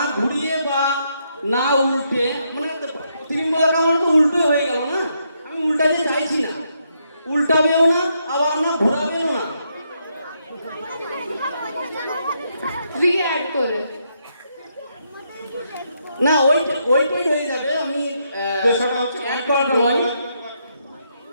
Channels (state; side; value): inverted; both; correlation -0.78